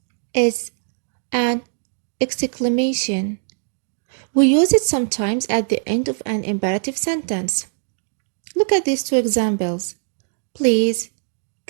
is an exclamation. We use it sometimes at the end of an imperative sentence. Look at these 2 examples. Please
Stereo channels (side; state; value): left; silent; digital silence